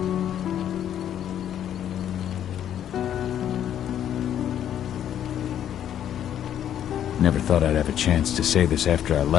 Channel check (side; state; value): right; quieter; 10.2 dB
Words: Never thought I'd have a chance to say this after I